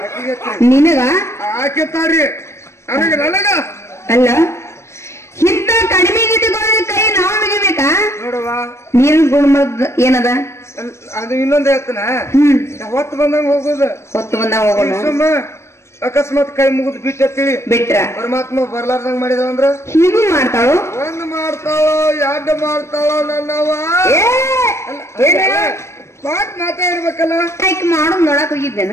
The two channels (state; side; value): late; right; 0.13 ms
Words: ನಿನಗ ಆಕೆತ್ತಾರಿ ನನಗ ಅಲ್ಲ ಇಂತ ಕಡಿಮೆ ಕೈ ನಾವು ಮುಗಿಬೇಕಾ? ನೋಡುವ ನೀರು ಗುಣಮದ ಏನದ ಅದು ಇನ್ನೊಂದ್ ಹೇಳ್ತಾನ. ಹೊತ್ತು ಬಂದಂಗ ಹೋಗುದು. ಹೊತ್ತು ಬಂದಂಗ ಹೋಗೋಣ. ಅಕಸ್ಮಾತ್ ಕೈ ಮುಗಿದ್ ಬಿಟ್ರ ಪರಮಾತ್ಮ ಬರ್ಲಾರ್ದಂಗ ಮಾಡಿದವ ಅಂದ್ರ ಹೀಗೂ ಮಾಡ್ತಾಳು. 1 ಮಾಡ್ತಾಳೋ 2 ಮಾಡ್ತಾಳೋ ನನ್ನವ ಮಾತ್ ಮಾತಾಡ್ಬೇಕಲ್ಲ. ಮಾಡೋದ್ ನೋಡಕ್ ಹೋಗಿದ್ದೇನೆ.